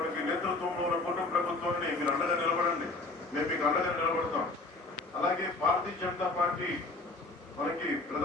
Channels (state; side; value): quieter; right; 3.2 dB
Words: నేతృత్వంలో ఉన్న కూటమి ప్రభుత్వాన్ని మీరు అండగా నిలబడండి, మేము మీకు అండగా నిలబడతాం. అలాగే భారతీయ జనతా పార్టీ మనకి